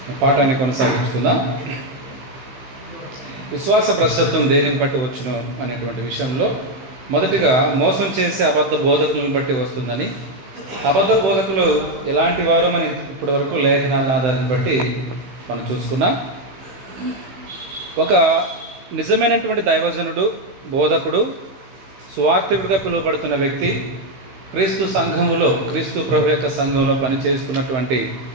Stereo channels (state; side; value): late; left; 16 ms